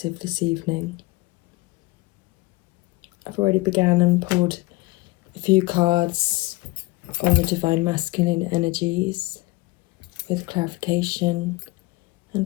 this evening. I've already began and pulled a few cards on the Divine Masculine energies with clarification,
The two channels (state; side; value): quieter; right; 21.9 dB